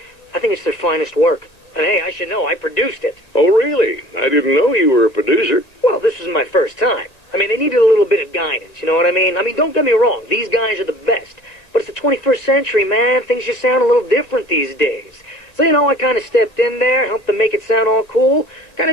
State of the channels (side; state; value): right; late; 1.9 ms